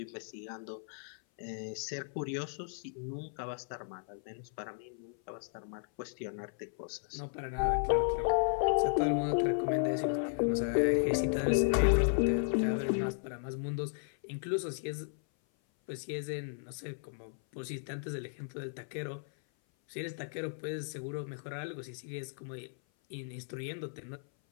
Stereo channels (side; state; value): right; silent; 54 dB below the other